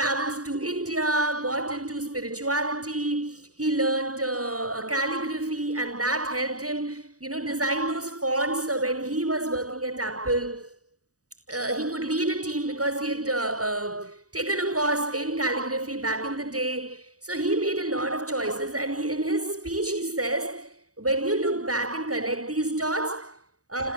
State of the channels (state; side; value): late; left; 0.66 ms